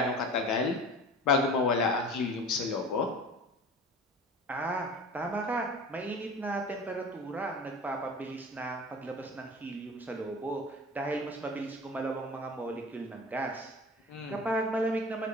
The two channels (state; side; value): normal; both; correlation 0.37